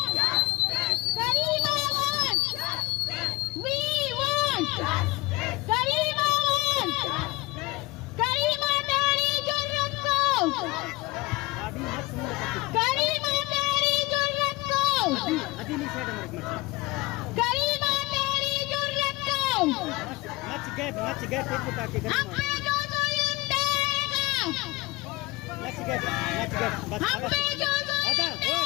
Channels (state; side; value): quieter; right; 22.1 dB